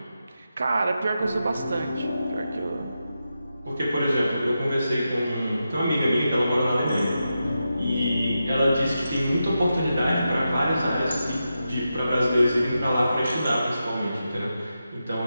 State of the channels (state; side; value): inverted; both; correlation -0.89